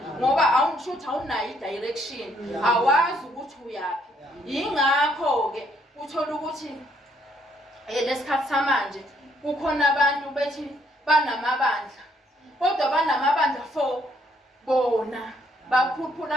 ngoba awungishuthi awunayo i-direction, awazi ukuthi uyaphi. Yingakho ke uthola ukuthi lesikhathi samanje kukhona abantu bethi banamabandla, kodwa banamabandla for bona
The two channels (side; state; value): both; normal; correlation 0.69